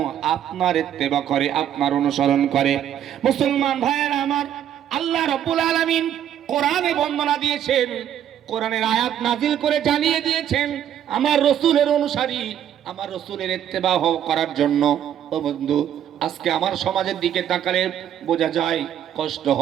আপনার ইত্তেবা করে, আপনার অনুসরণ করে। মুসলমান ভাইয়েরা আমার, আল্লাহ রাব্বুল আলামিন কোরআনে বর্ণনা দিয়েছেন, কোরআনের আয়াত নাজিল করে জানিয়ে দিয়েছেন আমার রাসূলের অনুসারী, আমার রাসূলের ইত্তেবা করার জন্য। ও বন্ধু, আজকে আমার সমাজের দিকে তাকালে বোঝা যায়, কষ্ট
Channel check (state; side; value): quieter; left; 10.2 dB